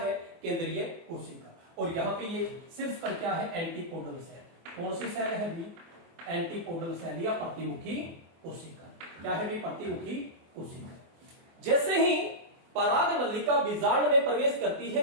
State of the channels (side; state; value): left; late; 24 ms